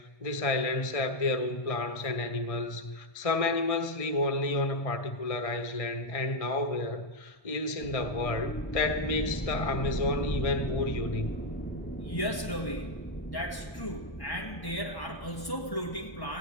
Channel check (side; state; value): right; late; 1.1 ms